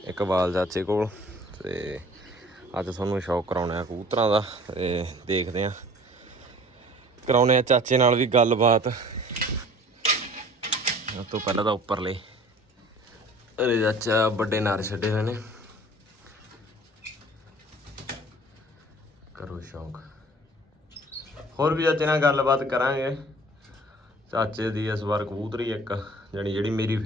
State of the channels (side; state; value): both; normal; correlation 0.49